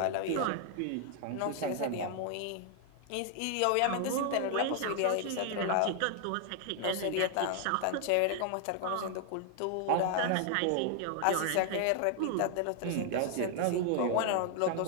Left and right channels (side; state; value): both; different; correlation 0.00